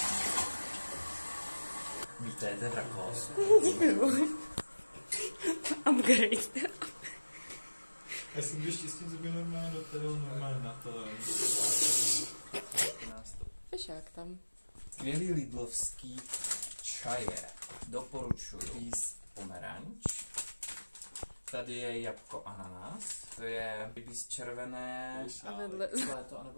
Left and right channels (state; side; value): inverted; both; correlation -1.00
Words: Vítejte, Drakos. Děkuju. Upgrade. Já jsem byl štěstí, že by normálně do toho normálně na to. Fešák tam. Skvělý lidlovský čaje. Doporučuji. Rýs pomeranč. Tady je jabko ananas. To je rybíz červené. A vedle. Léto